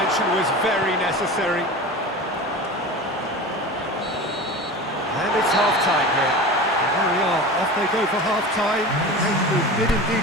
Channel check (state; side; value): normal; both; correlation 0.32